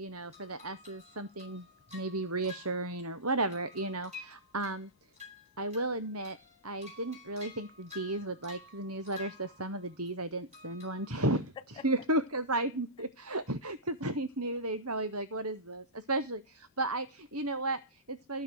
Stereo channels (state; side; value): normal; both; correlation -0.19